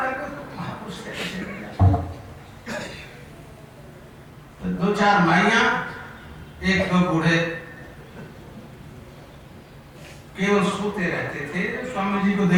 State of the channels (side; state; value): both; identical; correlation 1.00